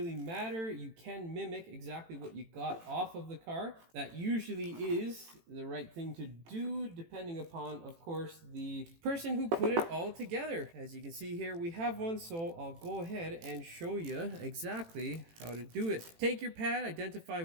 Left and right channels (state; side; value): late; left; 18 ms